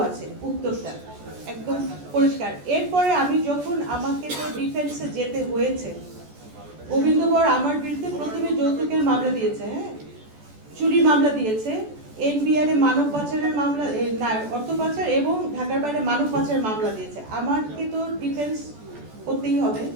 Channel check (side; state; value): left; late; 14 ms